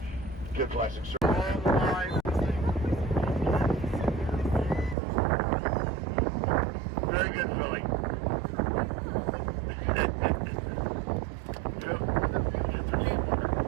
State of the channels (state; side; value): drops out; left; at 5.0 s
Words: good plastic surgery. All the line. Very good, Philly.